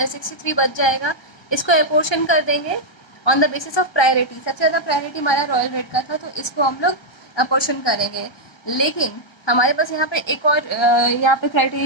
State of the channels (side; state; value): right; late; 1.3 ms